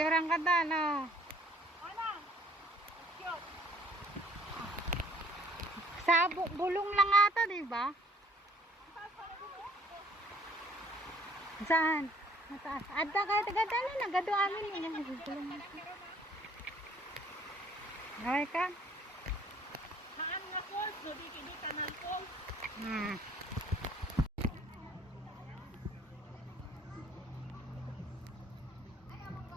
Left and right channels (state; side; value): normal; both; correlation 0.57